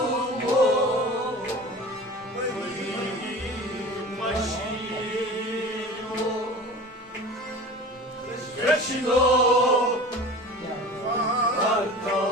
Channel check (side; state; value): both; normal; correlation 0.37